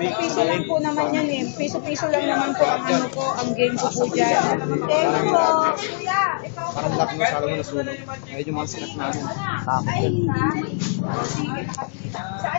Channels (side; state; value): right; silent; digital silence